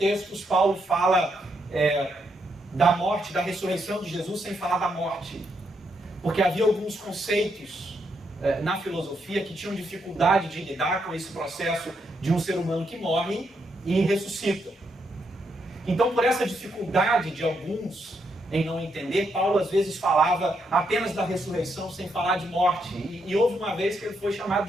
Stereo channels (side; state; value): both; normal; correlation 0.78